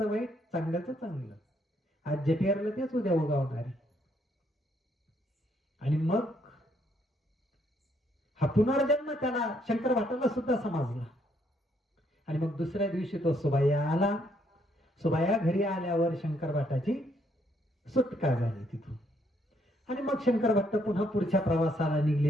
वाईट, चांगल्याचं चांगलं. आज जे पेरलं तेच उद्या उगवणार आहे. आणि मग हा पुनर्जन्म त्याला शंकर भाटाला सुद्धा समजला. आणि मग दुसऱ्या दिवशी तो सुबाया आला. सुबाया घरी आल्यावर शंकर भाटाची सुटका झाली तिथून. आणि मग शंकर भट्ट पुन्हा पुढच्या प्रवासाला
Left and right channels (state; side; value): normal; both; correlation 0.71